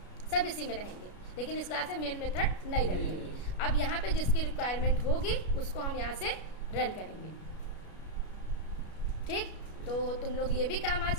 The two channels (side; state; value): right; late; 33 ms